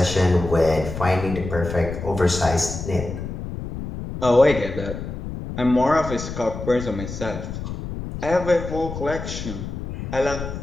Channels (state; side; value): noise; left; rumble, 7 dB below the sound